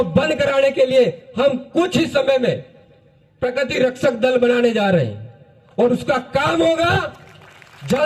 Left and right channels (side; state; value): both; identical; correlation 1.00